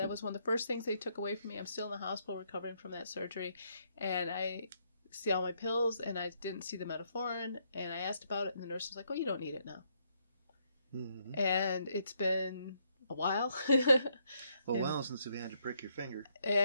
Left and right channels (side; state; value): both; inverted; correlation -0.74